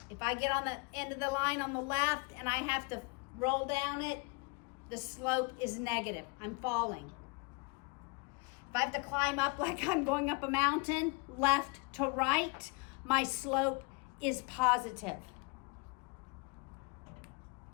If I get on the end of the line on the left and I have to roll down it, the slope is negative. I'm falling. If I have to climb up like I'm going up a mountain, left to right, my slope is positive.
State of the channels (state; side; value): quieter; right; 31.4 dB